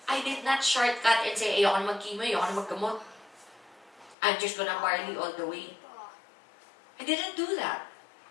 I did not shortcut and say, ayoko na mag-chemo, ayoko na maggamot. I'm just gonna barley all the way. I didn't do that.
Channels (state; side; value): drops out; right; at 4.2 s